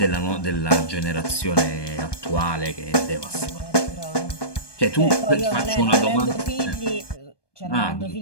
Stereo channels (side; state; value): right; late; 1.2 ms